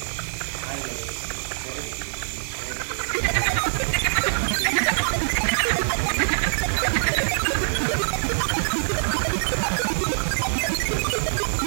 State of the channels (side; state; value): left; silent; 62 dB below the other